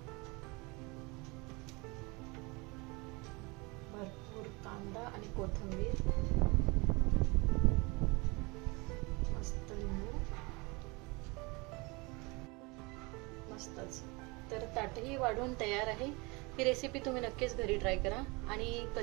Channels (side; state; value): left; quieter; 26.7 dB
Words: भरपूर कांदा आणि कोथिंबीर, मस्त लिंबू, मस्तच. तर ताटही वाढून तयार आहे. ही रेसिपी तुम्ही नक्कीच घरी ट्राय करा आणि